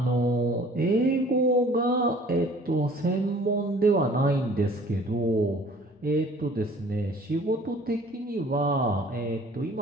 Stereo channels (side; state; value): both; normal; correlation 0.51